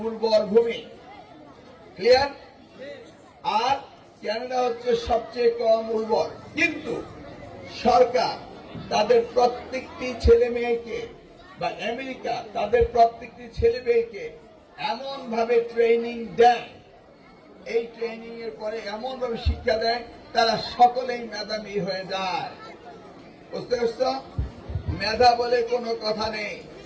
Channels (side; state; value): both; identical; correlation 1.00